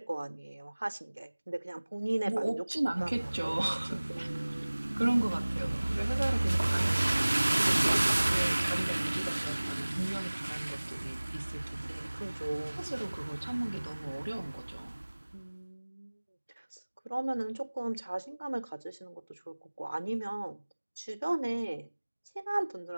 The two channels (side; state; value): both; inverted; correlation -1.00